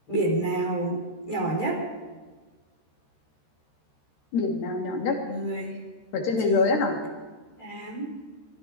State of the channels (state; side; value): late; right; 13 ms